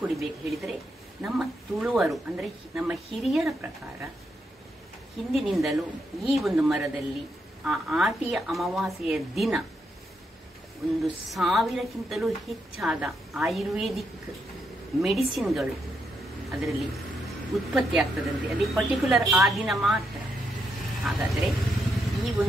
ಹೇಳಿದರೆ, ನಮ್ಮ ತುಳುವರು ಅಂದರೆ ನಮ್ಮ ಹಿರಿಯರ ಪ್ರಕಾರ ಹಿಂದಿನಿಂದಲೂ ಈ ಒಂದು ಮರದಲ್ಲಿ ಆ ಆಟಿಯ ಅಮಾವಾಸ್ಯೆಯ ದಿನ 1000ಕ್ಕಿಂತಲೂ ಹೆಚ್ಚಾದ ಆಯುರ್ವೇದಿಕ್ ಮೆಡಿಸಿನ್ಗಳು ಅದರಲ್ಲಿ ಉತ್ಪತ್ತಿ ಆಗ್ತದಂತೆ. ಅದೇ ಪರ್ಟಿಕ್ಯುಲರ್ ಆ ದಿನ ಮಾತ್ರ. ಹಾಗಾದರೆ ಈ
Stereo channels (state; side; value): normal; both; correlation 0.80